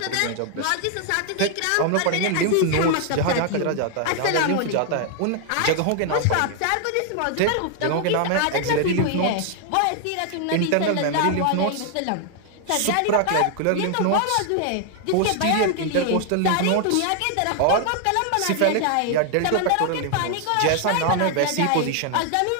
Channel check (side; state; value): both; different; correlation 0.00